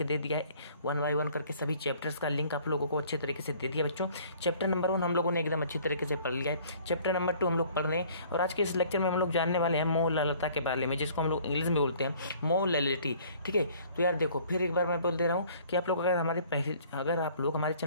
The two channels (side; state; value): both; inverted; correlation -0.55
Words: दे दिया है 1 बाय 1 करके सभी चैप्टर्स का लिंक आप लोगों को अच्छे तरीके से दे दिया बच्चों। चैप्टर नंबर 1 हम लोगों ने एकदम अच्छी तरीके से पढ़ लिया है, चैप्टर नंबर 2 हम लोग पढ़ रहे हैं, और आज के इस लेक्चर में हम लोग जानने वाले हैं मोललता के बारे में, जिसको हम लोग इंग्लिश में बोलते हैं मोलैलिटी, ठीक है। तो यार देखो, फिर एक बार मैं बोल दे रहा हूँ कि आप लोग अगर आप लोग हमारे